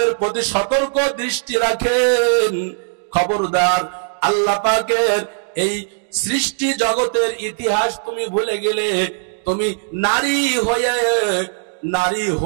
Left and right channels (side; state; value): left; silent; digital silence